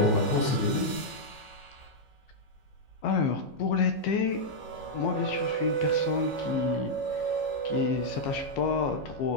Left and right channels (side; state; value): right; late; 15 ms